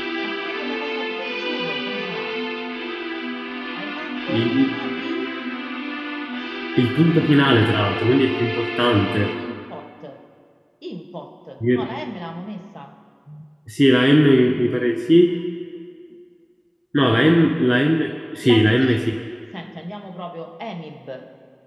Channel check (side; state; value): both; identical; correlation 1.00